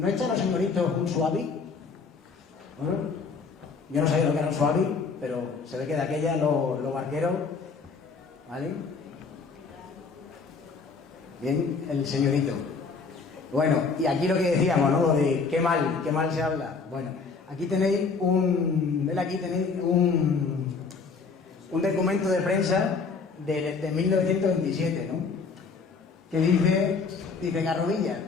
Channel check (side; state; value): right; quieter; 4.8 dB